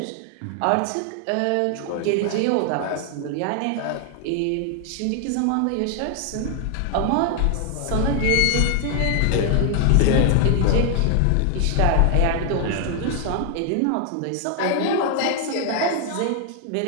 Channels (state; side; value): different; both; correlation 0.00